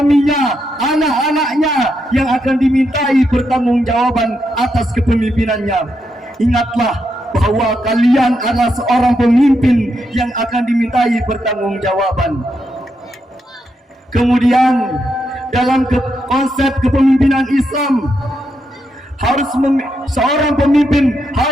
anak-anaknya yang akan dimintai pertanggungjawaban atas kepemimpinannya. Ingatlah bahwa kalian adalah seorang pemimpin yang akan dimintai pertanggungjawaban. Kemudian dalam konsep kepemimpinan Islam, seorang pemimpin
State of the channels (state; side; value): normal; both; correlation 0.82